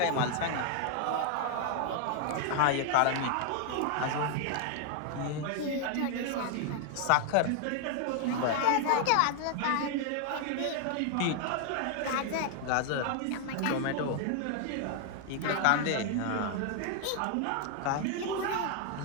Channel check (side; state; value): both; different; correlation 0.00